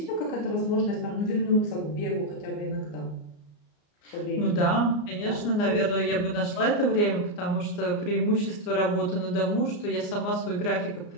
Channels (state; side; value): late; right; 34 ms